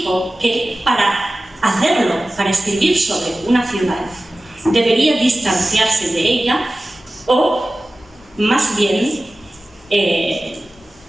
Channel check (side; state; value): both; normal; correlation 0.96